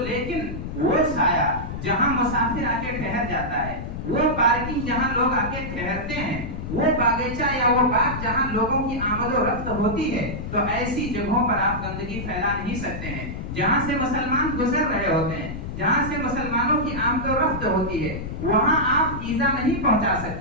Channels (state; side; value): noise; left; rumble, 7 dB below the sound